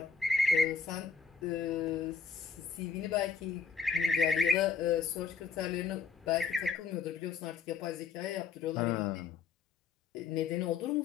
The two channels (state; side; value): quieter; right; 5.7 dB